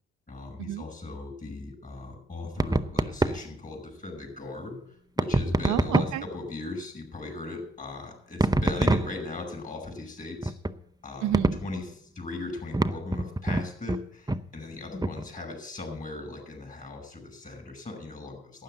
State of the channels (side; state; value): both; normal; correlation 0.75